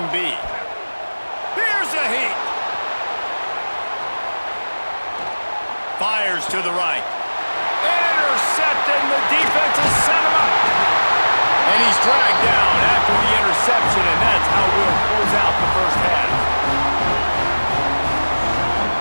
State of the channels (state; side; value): inverted; both; correlation -1.00